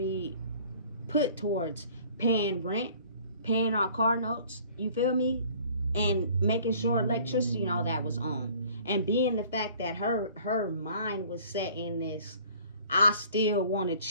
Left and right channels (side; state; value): both; inverted; correlation -0.52